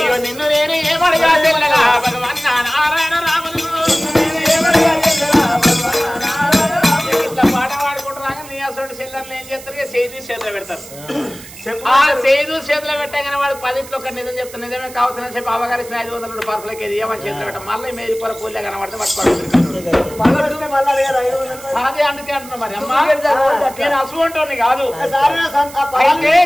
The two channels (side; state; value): right; noise; hiss, 17 dB below the sound